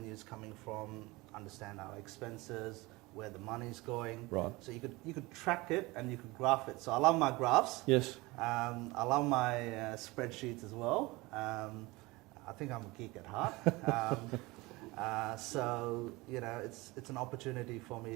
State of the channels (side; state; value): left; quieter; 22.5 dB